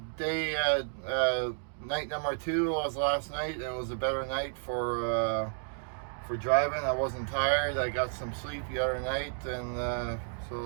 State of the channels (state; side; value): silent; left; 57 dB below the other